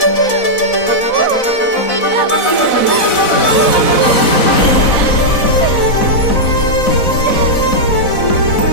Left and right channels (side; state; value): right; late; 4.0 ms